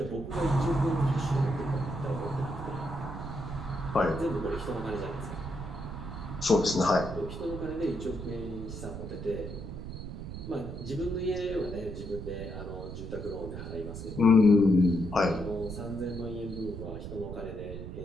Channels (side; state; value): right; noise; rumble, 8 dB below the sound